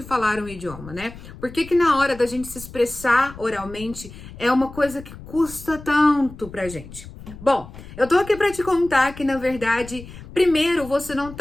falar um idioma, né? Por que na hora da gente se expressar oralmente é uma coisa que custa tanto pra gente? Bom, eu tô aqui pra te contar que, na verdade, primeiro, você não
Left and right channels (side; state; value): left; noise; rumble, 15 dB below the sound